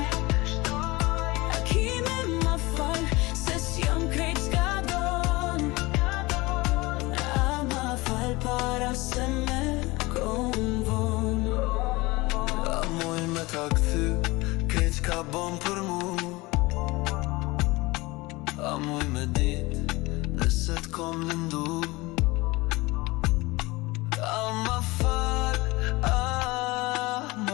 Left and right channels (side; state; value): right; quieter; 22.3 dB